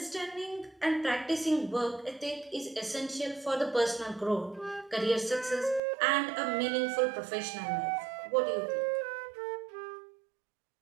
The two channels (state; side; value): drops out; left; at 5.8 s